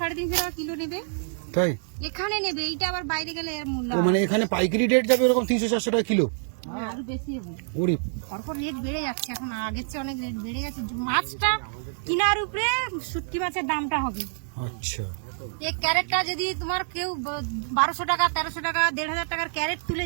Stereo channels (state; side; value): silent; left; digital silence